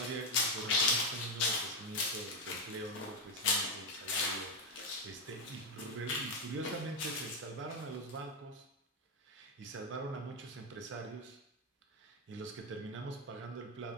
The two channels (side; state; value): both; normal; correlation 0.07